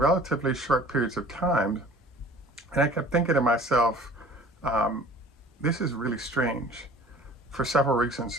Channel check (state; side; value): normal; both; correlation 0.47